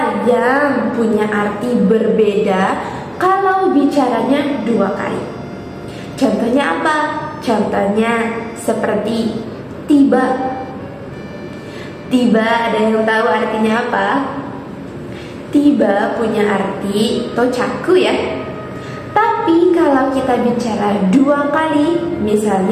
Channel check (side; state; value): both; identical; correlation 1.00